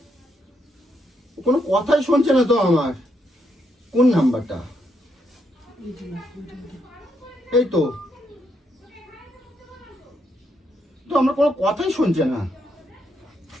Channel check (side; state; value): both; normal; correlation 0.78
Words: কথাই শুনছে না তো। আমার কোন নাম্বারটা? এই তো আমার কোনো কথাই শুনছে না।